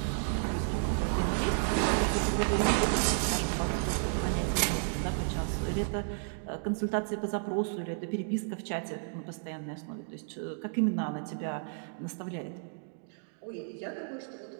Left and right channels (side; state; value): left; silent; digital silence